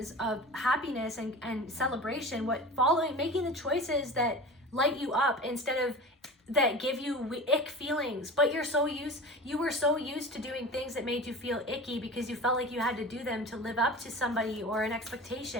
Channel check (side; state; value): both; normal; correlation 0.34